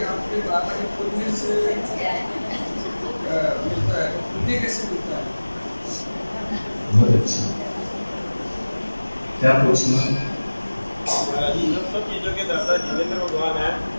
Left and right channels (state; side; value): inverted; both; correlation -1.00